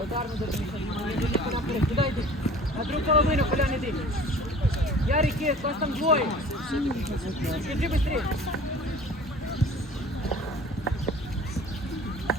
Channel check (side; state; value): both; normal; correlation 0.46